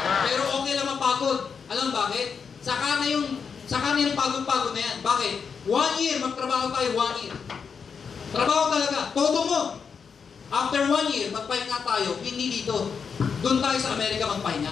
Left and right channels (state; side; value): quieter; right; 6.1 dB